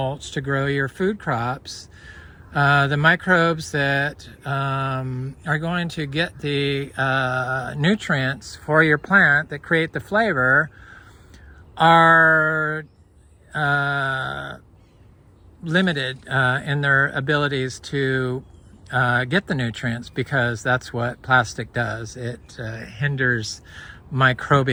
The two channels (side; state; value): both; identical; correlation 1.00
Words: to grow your food crops, the microbes that are going to get the nutrients for your plant that create the flavor are limited in their abilities to get the nutrients, because that's what plastic does. It hinders